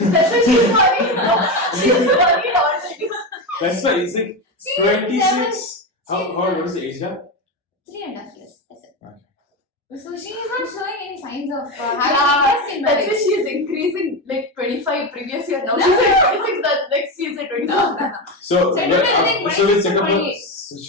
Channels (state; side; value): normal; both; correlation 0.16